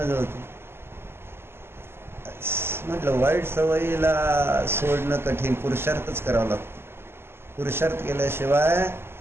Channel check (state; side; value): late; left; 0.12 ms